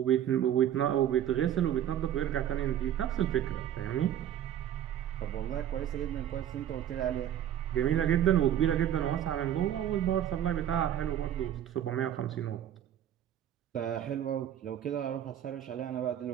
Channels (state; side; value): quieter; left; 10.6 dB